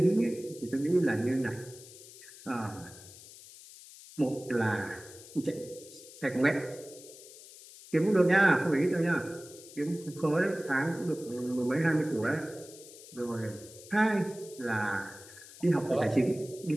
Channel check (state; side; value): noise; left; hiss, 18 dB below the sound